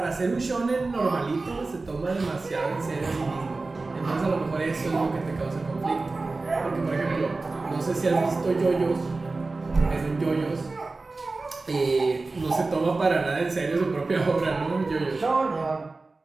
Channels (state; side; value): quieter; left; 3.6 dB